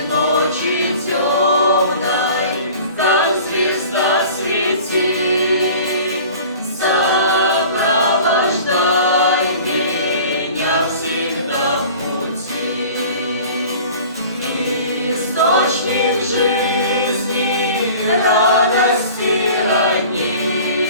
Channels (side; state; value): both; inverted; correlation -0.44